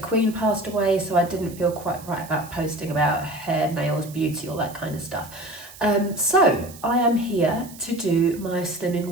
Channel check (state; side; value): noise; right; hiss, 18 dB below the sound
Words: passed away, so I didn't feel quite right about posting about hair, nails, beauty, all that kind of stuff. So I am here to do my Slimming